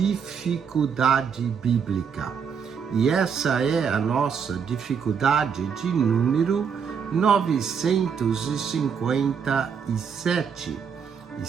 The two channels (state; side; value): quieter; left; 6.7 dB